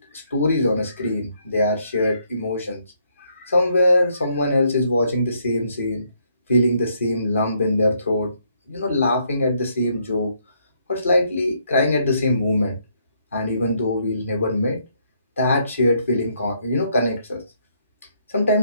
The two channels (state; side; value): inverted; both; correlation -0.72